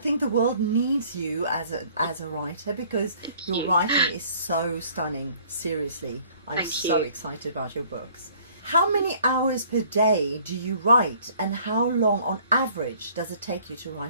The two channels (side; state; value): both; inverted; correlation -0.57